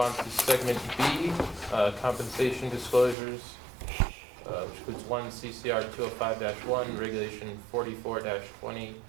to segment B, compensation disclosures, which includes 1 CCR 205-1, regulation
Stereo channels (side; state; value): left; drops out; at 3.2 s